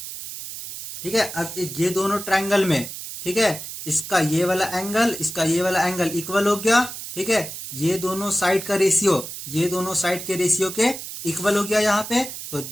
ठीक है, अब ये दोनों ट्रायंगल में, ठीक है, इसका ये वाला एंगल, इसका ये वाला एंगल इक्वल हो गया। ठीक है, ये दोनों साइड का रेशियो, ये दोनों साइड के रेशियो के इक्वल हो गया यहाँ पे। तो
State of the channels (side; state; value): right; noise; hiss, 9 dB below the sound